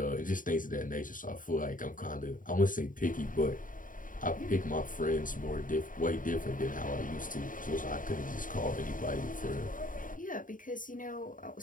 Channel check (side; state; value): right; late; 0.39 ms